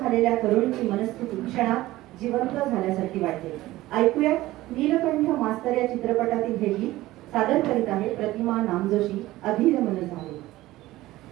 तरुणीची मनस्थिती क्षणात जिवंत झाल्यासारखी वाटते. ऐकूया नीलकंठ मास्तर या चित्रपटातील हे गीत सादर करीत आहे प्रतिमा नामजोशी. अधीर मन झाले.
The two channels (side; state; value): left; quieter; 17.0 dB